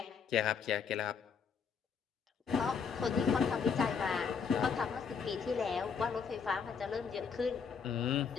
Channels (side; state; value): right; quieter; 6.1 dB